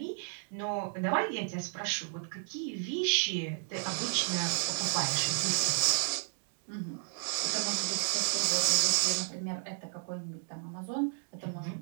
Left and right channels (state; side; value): silent; left; 56 dB below the other